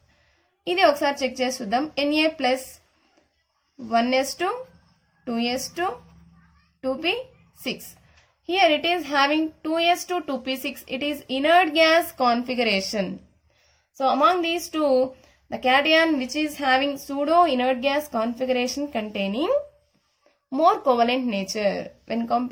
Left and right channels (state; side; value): identical; both; correlation 1.00